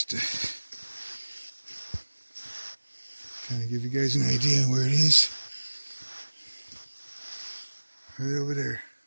Trying to give you guys an idea where it is. Right over there.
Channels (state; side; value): inverted; both; correlation -1.00